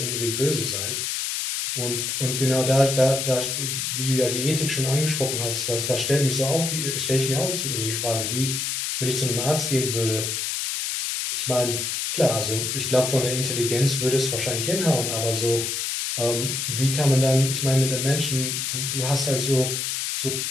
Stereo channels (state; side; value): noise; left; hiss, 1 dB below the sound